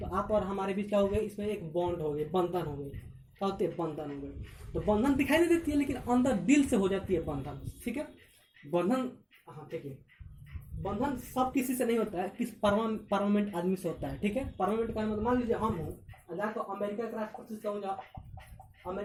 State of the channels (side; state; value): both; identical; correlation 1.00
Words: आप और हमारे बीच क्या हो गए, इसमें एक बॉन्ड हो गई, बंधन हो गई। क्या होती है, बंधन हो गई। तो बंधन दिखाई नहीं देती है, लेकिन अंदर दिल से हो जाती है बंधन। ठीक है, बंधन, हाँ ठीक है, बंधन सब किसी से नहीं होता है, किस परमानेंट आदमी से होता है। ठीक है, परमानेंट का मतलब मान लीजिए हम हूँ, जाकर अमेरिका के राष्ट्रपति से कहूँ, अमेरिका